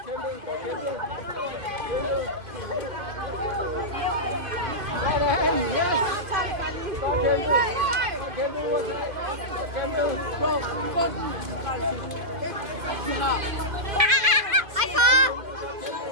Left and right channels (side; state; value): left; late; 2.7 ms